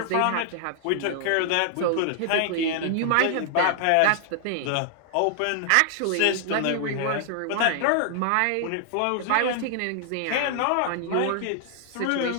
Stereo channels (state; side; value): different; both; correlation 0.00